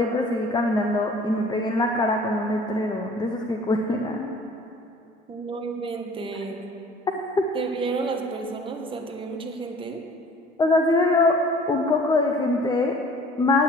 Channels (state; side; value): normal; both; correlation 0.50